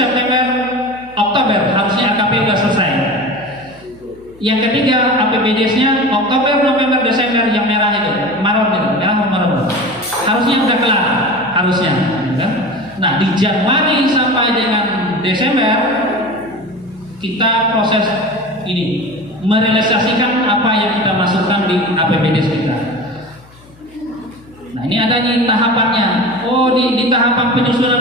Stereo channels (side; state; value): left; noise; hum, 26 dB below the sound